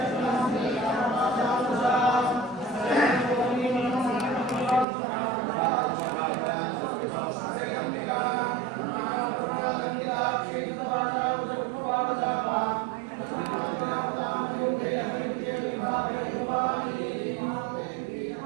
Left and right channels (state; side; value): drops out; left; at 4.9 s